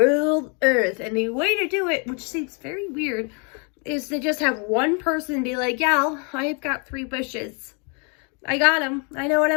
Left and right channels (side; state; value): right; quieter; 35.5 dB